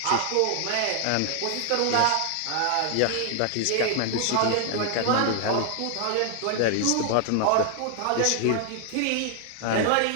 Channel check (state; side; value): different; both; correlation 0.00